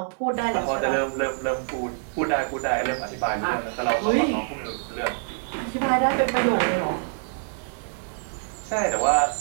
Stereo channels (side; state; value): left; silent; digital silence